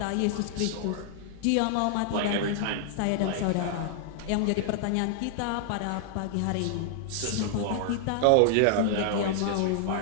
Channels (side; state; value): both; different; correlation -0.01